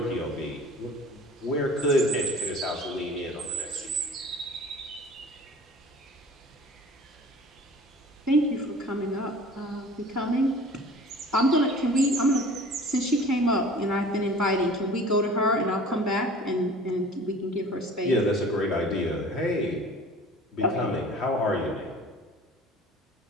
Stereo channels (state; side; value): normal; both; correlation 0.44